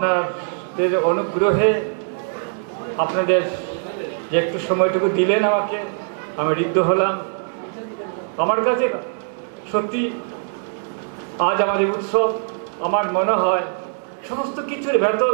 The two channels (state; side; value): silent; left; digital silence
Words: অনুগ্রহে, আপনাদের যে একটু সময়টুকু দিলেন আমাকে, আমি ঋদ্ধ হলাম। আমার কাছে সত্যি আজ আমাদের উৎসব, আমার মনে হয় সমস্ত কিছুর ভেতর